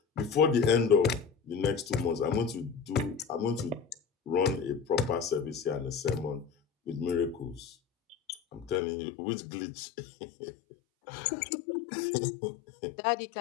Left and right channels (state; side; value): drops out; right; at 8.8 s